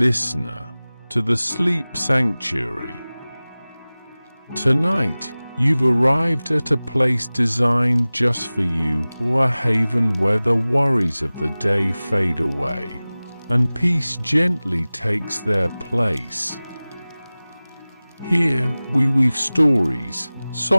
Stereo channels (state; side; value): inverted; both; correlation -0.99